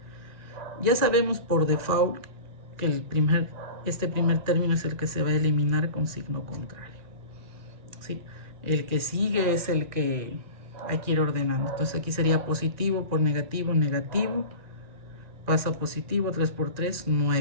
Ya sabemos por default que este primer término es el que se va a eliminar con signo contrario. ¿Sí? El que sigue es el que hay que ir ordenando. Entonces aquí sería positivo por negativo, negativo. Pasa positivo, 3 por 3,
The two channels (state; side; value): late; left; 2.3 ms